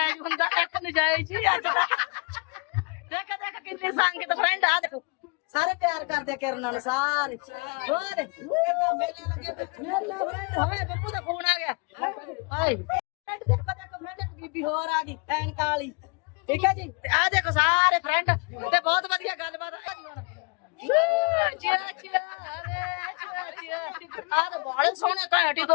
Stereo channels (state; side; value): quieter; right; 32.6 dB